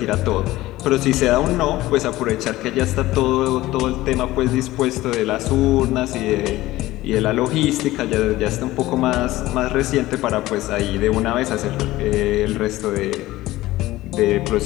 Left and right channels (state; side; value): quieter; right; 17.1 dB